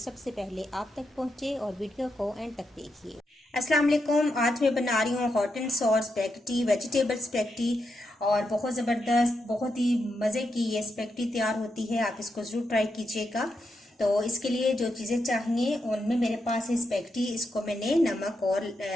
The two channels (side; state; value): both; normal; correlation 0.84